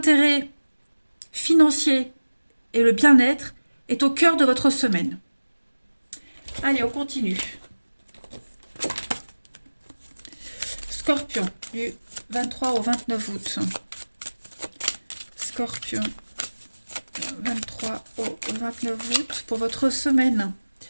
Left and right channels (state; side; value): inverted; both; correlation -1.00